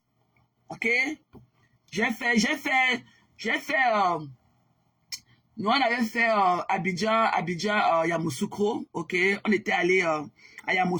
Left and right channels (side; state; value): both; identical; correlation 1.00